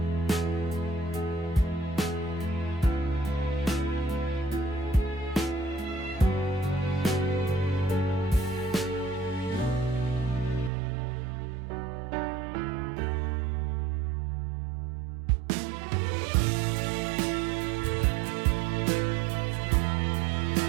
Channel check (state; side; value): drops out; left; at 10.7 s